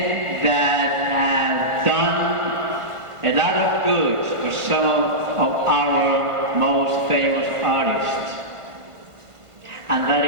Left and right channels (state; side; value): late; left; 1.5 ms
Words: that have done a lot of good famous artists. And that